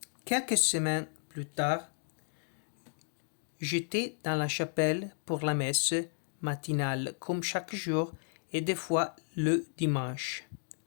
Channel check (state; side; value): silent; right; digital silence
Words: Quelques semaines plus tard, j'étais dans la chapelle pour la messe matinale, comme chaque jour, et des fois le dimanche.